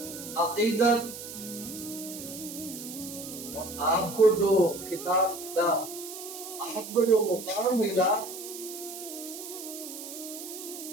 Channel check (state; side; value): noise; right; hiss, 10 dB below the sound